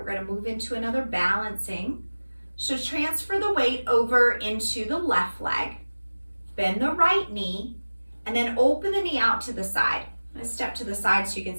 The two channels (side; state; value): both; inverted; correlation -1.00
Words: going to move into another balancing. So transfer the weight over into the left leg. Bend the right knee and then open the knee out to the side. I'm going to step to the side so you can